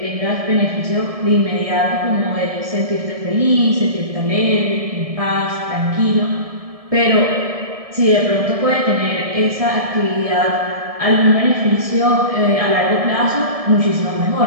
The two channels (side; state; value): left; late; 1.7 ms